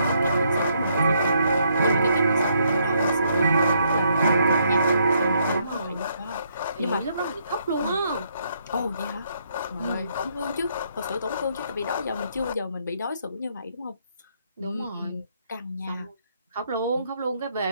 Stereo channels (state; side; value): inverted; both; correlation -0.72